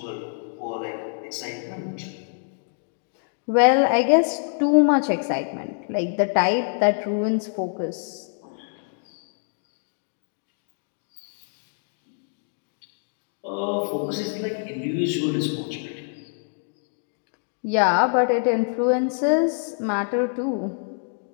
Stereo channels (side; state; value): right; silent; digital silence